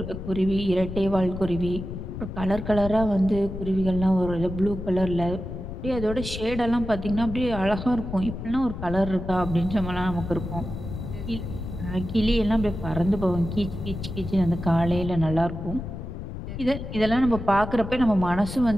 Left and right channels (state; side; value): noise; left; rumble, 7 dB below the sound